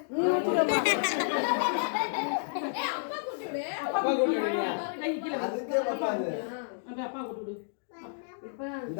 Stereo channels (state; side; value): silent; right; digital silence